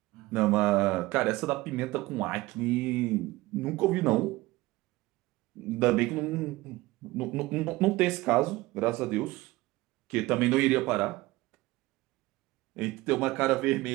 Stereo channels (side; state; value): left; quieter; 19.4 dB